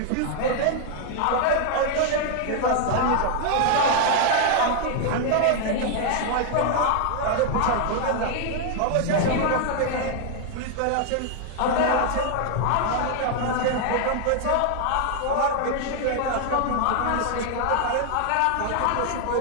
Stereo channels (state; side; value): different; both; correlation 0.00